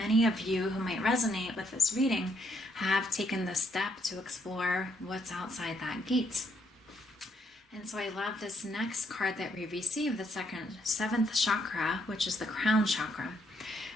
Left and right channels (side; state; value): both; normal; correlation 0.73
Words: of you who might resonate with this reading have taken the step to explore what's outside that gate. And so I love this next card that we received, the 7th chakra, which is the crown chakra.